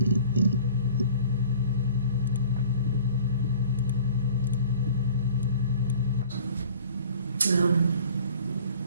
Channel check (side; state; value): both; inverted; correlation -0.48